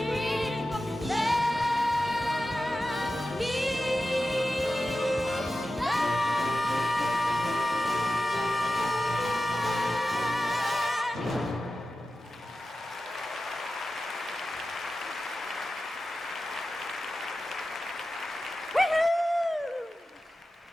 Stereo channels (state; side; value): normal; both; correlation 0.93